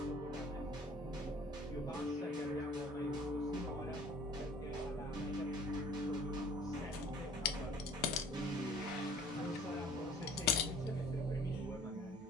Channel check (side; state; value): both; normal; correlation 0.51